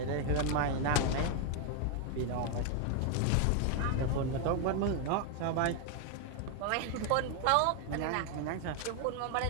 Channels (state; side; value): different; both; correlation 0.01